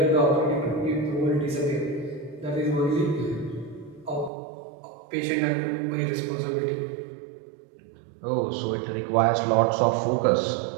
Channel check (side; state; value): left; drops out; at 4.3 s